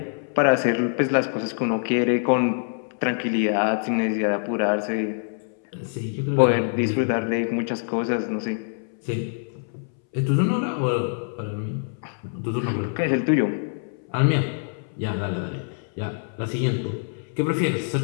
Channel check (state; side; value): silent; right; 62 dB below the other